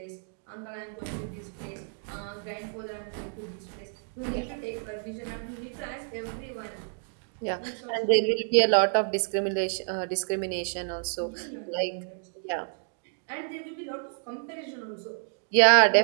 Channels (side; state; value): left; silent; 58 dB below the other